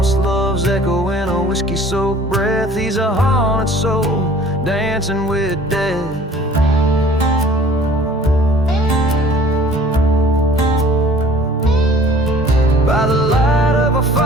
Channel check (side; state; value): both; normal; correlation 0.50